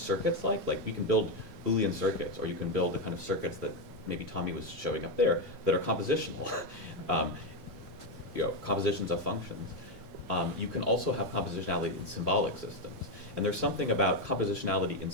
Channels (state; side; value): late; left; 9.5 ms